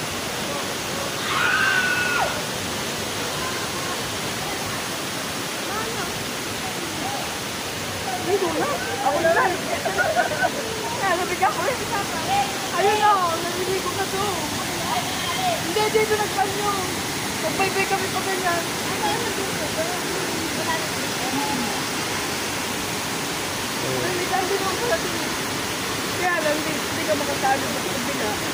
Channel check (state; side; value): identical; both; correlation 1.00